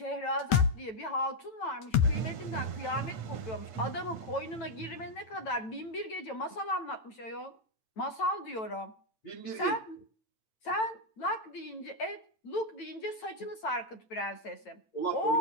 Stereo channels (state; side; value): late; right; 9.0 ms